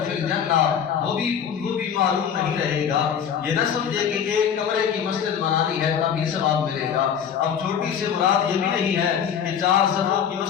فی الجنہ، وہ بھی معلوم نہیں رہے گا۔ یہ نہ سمجھے کہ ایک کمرے کی مسجد بنانی ہے تبھی ثواب ملے گا، اب چھوٹی سے مراد یہ بھی نہیں ہے کہ 4 صفوں کی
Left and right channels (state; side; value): quieter; right; 8.1 dB